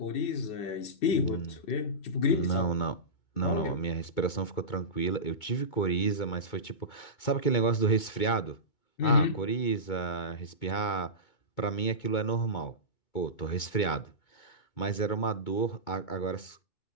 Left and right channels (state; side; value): late; right; 2.2 ms